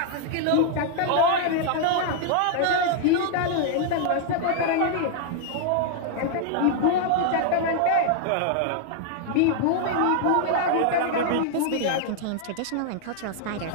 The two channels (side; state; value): both; different; correlation 0.00